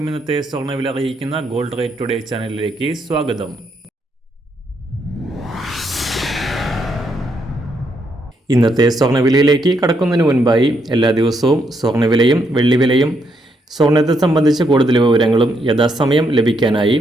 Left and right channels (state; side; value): normal; both; correlation 0.76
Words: ഇന്നത്തെ സ്വർണ്ണവില അറിയിക്കുന്ന ഗോൾഡ് റേറ്റ് ടുഡേ ചാനലിലേക്ക് സ്വാഗതം. ഇന്നത്തെ സ്വർണ്ണവിലയിലേക്ക് കടക്കുന്നതിന് മുൻപായി എല്ലാ ദിവസവും സ്വർണ്ണവിലയും വെള്ളിവിലയും സ്വർണ്ണത്തെ സംബന്ധിച്ച് കൂടുതൽ വിവരങ്ങളും യഥാസമയം ലഭിക്കാനായി